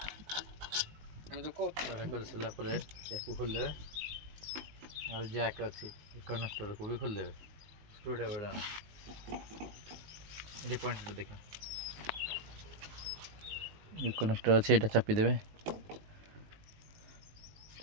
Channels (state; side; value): late; left; 19 ms